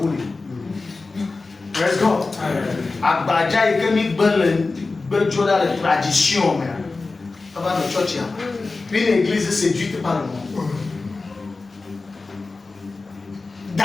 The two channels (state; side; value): quieter; right; 3.7 dB